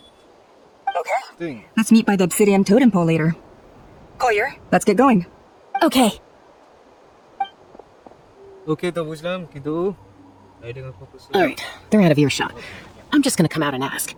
Okay. Thing. Let's meet by the obsidian totem pole later. Coyllur, let's get going. Okay. ওকে তো বুঝলাম কিন্তু riding of focus. All right, they're out of earshot. I'm just gonna come out and ask.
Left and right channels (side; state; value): both; identical; correlation 1.00